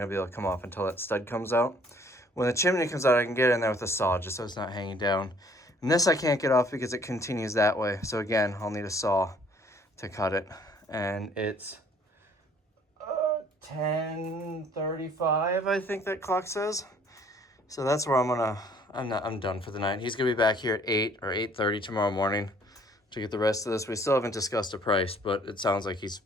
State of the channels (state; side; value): normal; both; correlation 0.58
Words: be able to come off until that stud comes out. When the chimney comes out, I can get in there with a saw, just so it's not hanging down. And this I can't get off because it continues that way. So again, I'll need a saw to cut it. And it's 10:35, I think that clock says. So that's where I'm done for the night. He's gonna be back here at 8 or 8:30 tomorrow morning to get the rest of this. We still haven't discussed a price, but it sounds like he's